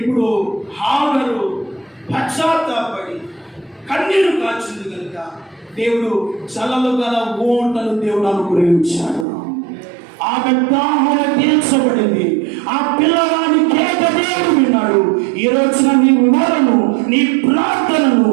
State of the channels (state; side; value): drops out; left; at 9.2 s